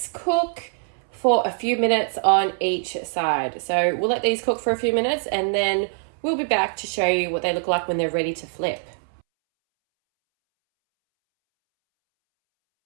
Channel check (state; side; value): silent; left; 63 dB below the other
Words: cook for a few minutes on each side. So we'll let these cook for a few minutes and then we'll be back to show you what they look like when they're ready to flip.